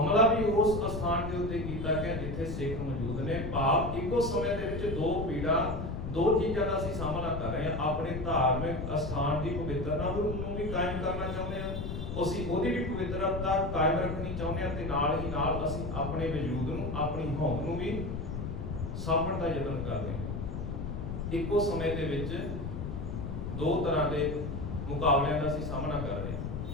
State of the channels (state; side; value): noise; left; rumble, 5 dB below the sound